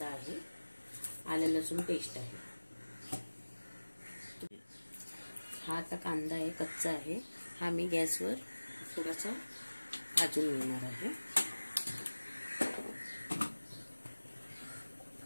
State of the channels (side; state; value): both; inverted; correlation -1.00